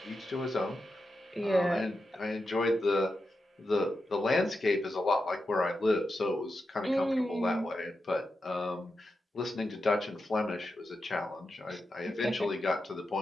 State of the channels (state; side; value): normal; both; correlation 0.88